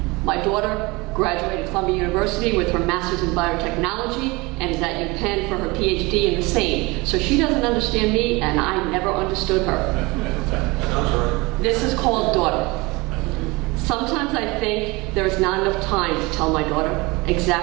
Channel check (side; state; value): left; quieter; 23.7 dB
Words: My daughter graduated Columbia University with her master's in biotechnology and is at UPenn for her PhD in the same. So she doesn't understand me and I never understood her. This is called Daughter. Sometimes I think there is not enough time to tell my daughter